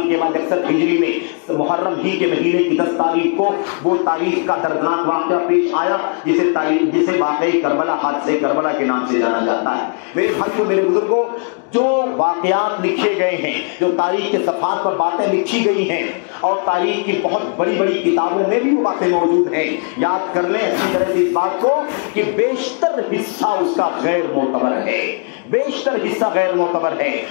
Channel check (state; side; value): quieter; right; 39.2 dB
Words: کے بعد 61 ہجری میں محرم ہی کے مہینے کی 10 تاریخ کو وہ تاریخ کا دردناک واقعہ پیش آیا جسے واقعی کربلا, حادثے کربلا کے نام سے جانا جاتا ہے. میرے بھائیوں, میرے بزرگوں, جو واقعات لکھے گئے ہیں, جو تاریخ کے صفحات پر باتیں لکھی گئی ہیں اور تاریخ کی بہت بڑی بڑی کتابوں میں بھی وہ باتیں موجود ہیں, یاد کر لیں اچھی طرح سے اس بات کو کہ بیشتر حصہ اس کا غیر معتبر ہے, بیشتر حصہ غیر معتبر معتبر ہے،